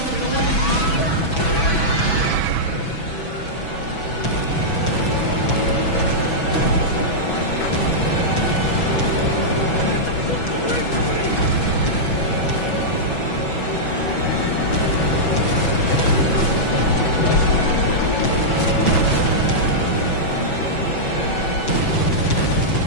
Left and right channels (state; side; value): late; right; 6.1 ms